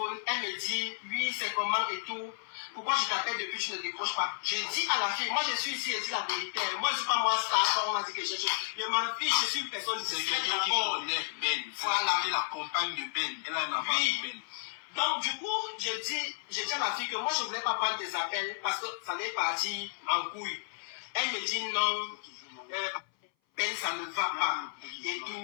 elle me dit, oui, c'est comment et tout. Pourquoi je t'appelle depuis que tu ne décroches pas? Je dis à la fille, moi je suis ici, elle dit la vérité. Moi je ne suis pas moi star, on a dit que je m'en fiche, je suis une personne de sécurité. C'est quelqu'un qui connaît Ben. Voilà. Elle est la compagne de Ben. Elle a un enfant de Ben. Donc du coup, je dis à la fille que moi je ne voulais pas prendre des appels parce que ça allait partir en couille. Elle me dit non. Ben, ça ne va pas. Et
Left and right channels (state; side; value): silent; right; 56 dB below the other